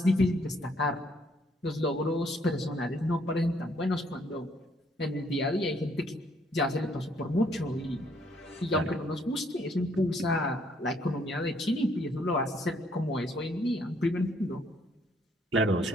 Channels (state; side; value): normal; both; correlation 0.67